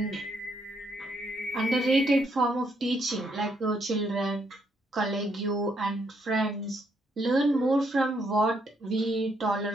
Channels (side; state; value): both; normal; correlation 0.74